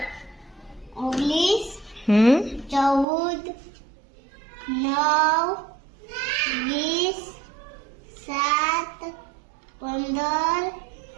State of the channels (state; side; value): drops out; left; at 3.1 s